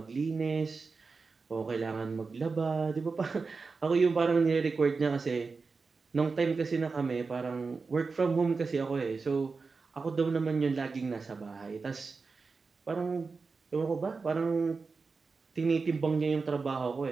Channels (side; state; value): left; quieter; 4.5 dB